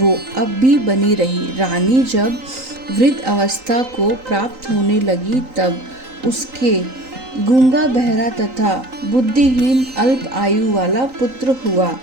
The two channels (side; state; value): left; late; 3.9 ms